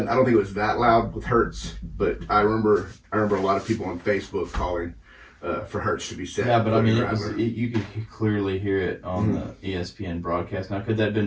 I don't think it was that loud with Hurts, but I remember a lot of people on Facebook calling for Hurts to be set. Yeah, but I mean, you could clearly hear it on the ESPN broadcast. Now, could that have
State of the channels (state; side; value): identical; both; correlation 1.00